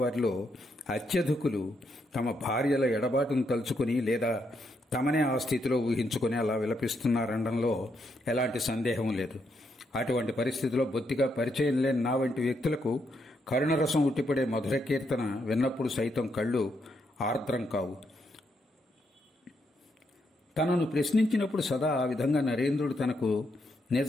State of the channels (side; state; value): both; normal; correlation 0.78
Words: అత్యధికులు తమ భార్యల ఎడబాటును తలుచుకుని లేదా తమనే ఆ స్థితిలో ఊహించుకుని అలా విలపిస్తున్నారనడంలో ఎలాంటి సందేహం లేదు. అటువంటి పరిస్థితిలో బొత్తిగా పరిచయం లేని నా వంటి వ్యక్తులకు కరుణరసం ఉట్టిపడే మధుర కీర్తన విన్నప్పుడు సైతం కళ్ళు ఆర్ద్రం కావు. తనను ప్రశ్నించినప్పుడు సదా ఆ విధంగా నరేంద్రుడు తనకు